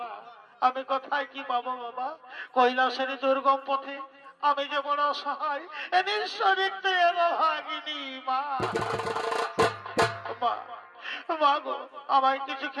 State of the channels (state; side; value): identical; both; correlation 1.00